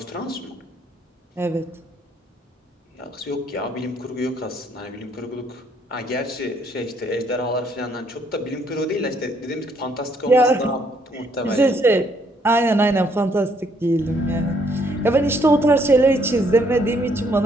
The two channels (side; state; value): both; normal; correlation 0.68